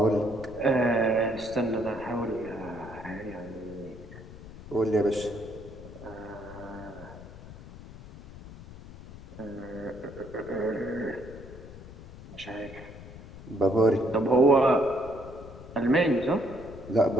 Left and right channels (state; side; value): noise; left; rumble, 16 dB below the sound